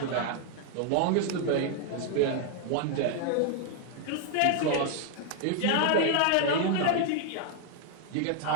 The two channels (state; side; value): different; both; correlation 0.00